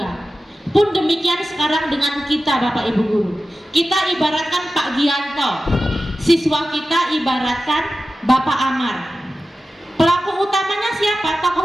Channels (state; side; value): normal; both; correlation 0.94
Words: Pun demikian sekarang dengan kita Bapak Ibu Guru. Kita ibaratkan Pak Gianto, siswa kita ibaratkan Bapak Amar. Pelaku utamanya siapa?